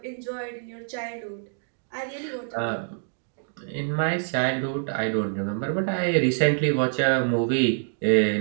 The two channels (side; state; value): left; silent; digital silence